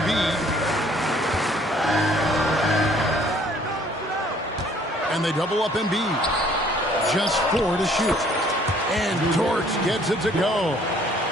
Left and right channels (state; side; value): normal; both; correlation 0.59